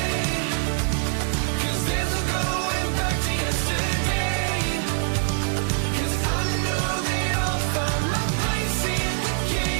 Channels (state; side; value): silent; left; 56 dB below the other